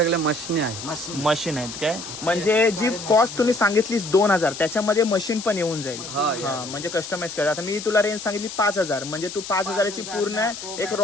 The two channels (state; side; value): noise; left; hiss, 10 dB below the sound